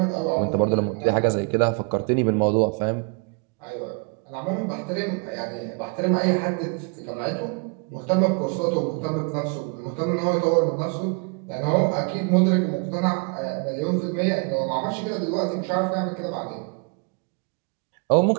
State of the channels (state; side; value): quieter; left; 34.2 dB